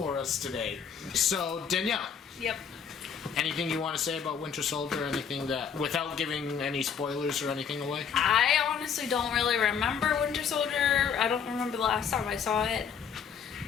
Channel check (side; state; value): right; quieter; 7.1 dB